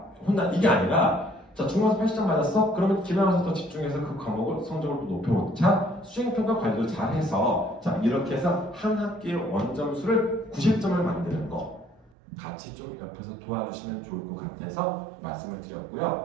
혼나 이게 아니라 자, 중간고사 80점 맞았어? 그러면 기말고사 더 집중해서 그 과목을 성적을 또 높여놓자. 수행평가 관리도 잘해서 자, 이렇게 해서 한 학기의 원점수를 90점을 만드는 거. 같이 좀 옆에서 도와주시면 좋을 것 같아서 말씀을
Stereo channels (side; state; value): left; drops out; at 12.1 s